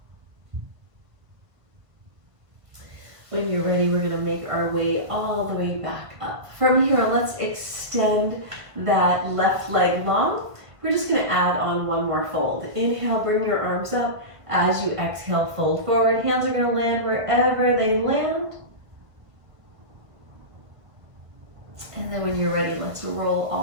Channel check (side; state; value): left; late; 1.5 ms